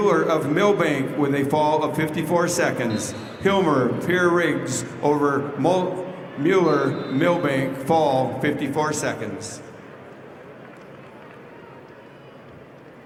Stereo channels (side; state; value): both; identical; correlation 1.00